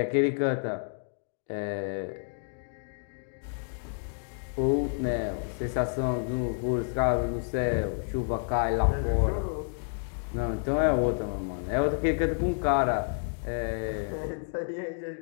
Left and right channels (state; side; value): silent; right; digital silence